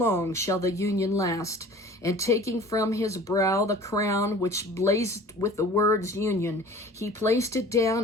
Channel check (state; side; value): normal; both; correlation 0.45